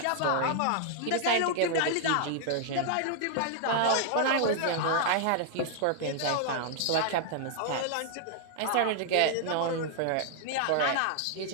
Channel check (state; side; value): different; both; correlation -0.01